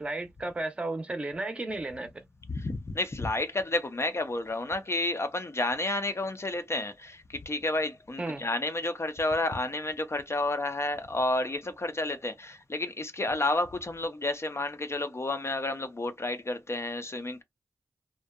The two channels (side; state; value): both; normal; correlation 0.52